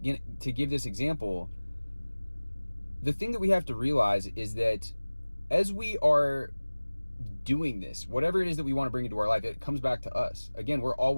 this example. The thing that we have to realize is that as we are doing this, whatever it is that we want to bring into our life, it comes back to us. Again, we're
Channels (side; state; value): both; inverted; correlation -1.00